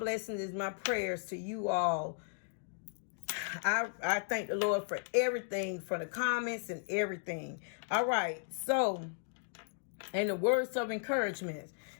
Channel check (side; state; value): right; silent; digital silence